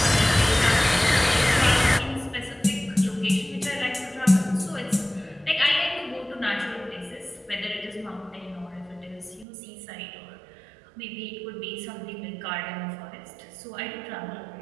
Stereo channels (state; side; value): drops out; left; at 9.5 s